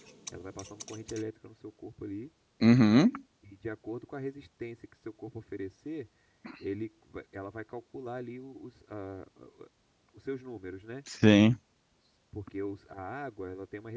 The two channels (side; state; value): both; identical; correlation 1.00